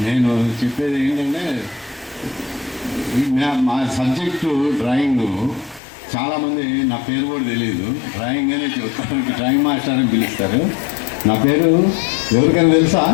నేను చెప్పేది ఏంటంటే, మా సబ్జెక్టు డ్రాయింగ్. చాలామంది నా పేరు కూడా తెలియదు, డ్రాయింగ్ అనే చెప్తారు, డ్రాయింగ్ మాస్టర్ అని పిలుస్తారు. నా పేరు ఎవరికైనా తెలుసా?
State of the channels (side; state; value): right; drops out; at 5.8 s